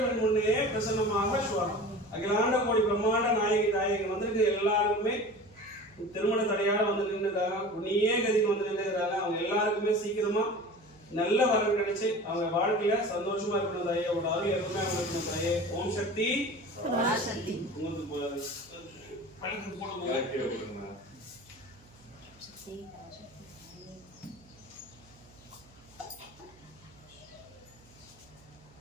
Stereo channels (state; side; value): noise; right; hum, 27 dB below the sound